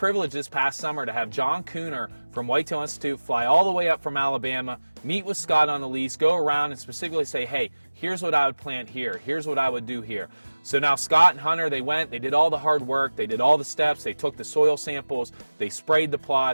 this past summer to have John Cooner from Whitetail Institute fly all the way up from Alabama, meet with Scott on the lease, go around and specifically say, hey, here's what I would plant here, here's what I would do here. So now Scott and Hunter, they went, they did all the hard work, they did all the steps, they took the soil samples, they sprayed the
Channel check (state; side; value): inverted; both; correlation -1.00